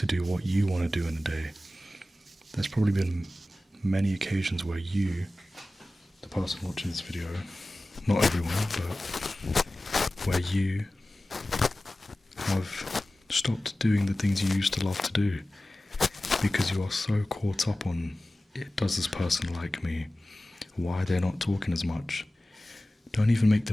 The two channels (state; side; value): normal; both; correlation 0.96